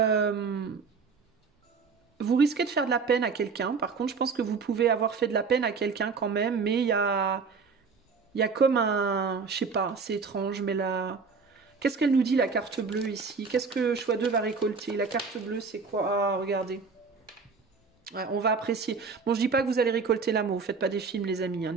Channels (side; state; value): left; quieter; 5.0 dB